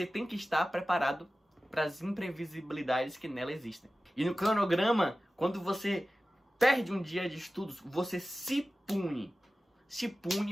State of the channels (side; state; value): both; normal; correlation 0.95